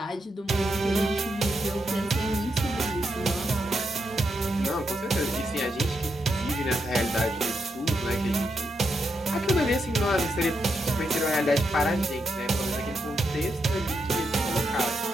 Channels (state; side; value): normal; both; correlation 0.82